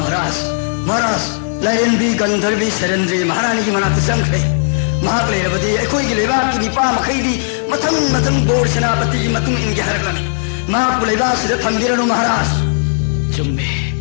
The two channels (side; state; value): right; silent; digital silence